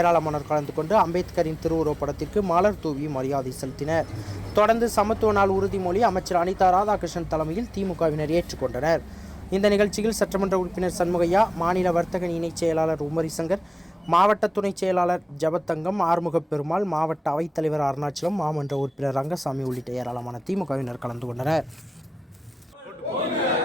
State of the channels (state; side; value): normal; both; correlation 0.97